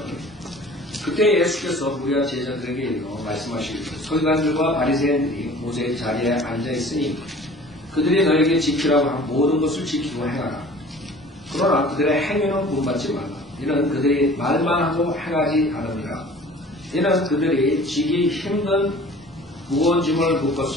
그때 예수께서 무리와 제자들에게 이르러 말씀하시기를 서기관들과 바리새인들이 모세의 자리에 앉아있으니 그들이 너에게 지키라고 한 모든 것을 지키고 행하라. 그러나 그들의 행위는 본받지 말라. 이는 그들이 말만 하고 행하지 않으니라. 이는 그들이 지기 힘든 무거운 짐을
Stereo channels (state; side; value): normal; both; correlation 0.46